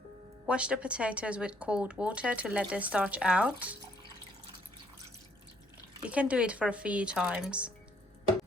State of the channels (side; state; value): both; normal; correlation 0.66